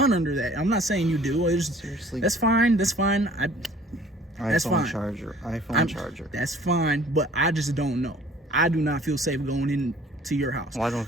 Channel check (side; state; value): both; normal; correlation 0.52